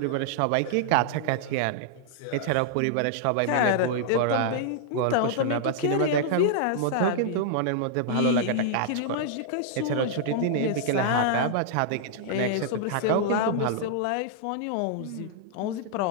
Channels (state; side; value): different; both; correlation -0.01